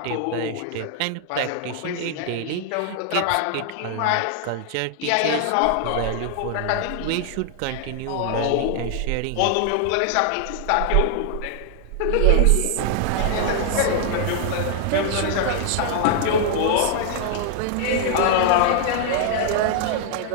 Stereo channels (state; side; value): different; both; correlation 0.00